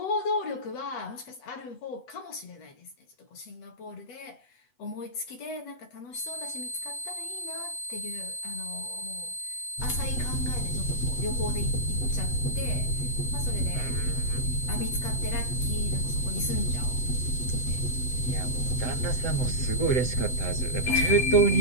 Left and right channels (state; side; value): late; right; 8.0 ms